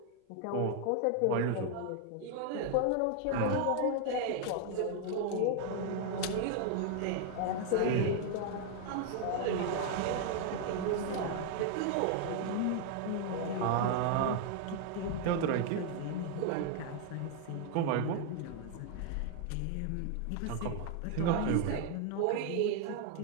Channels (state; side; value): different; both; correlation 0.00